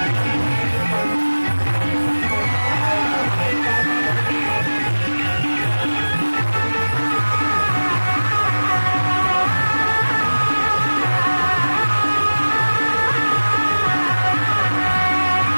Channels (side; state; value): both; inverted; correlation -1.00